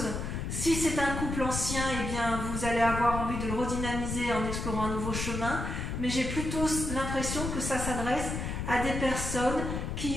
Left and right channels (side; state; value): left; noise; rumble, 4 dB below the sound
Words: Si c'est un couple ancien, eh bien, vous allez avoir envie de le redynamiser en explorant un nouveau chemin. Mais j'ai plutôt l'impression que ça s'adresse à des personnes